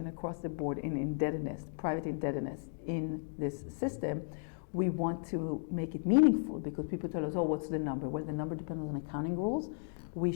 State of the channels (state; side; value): silent; right; digital silence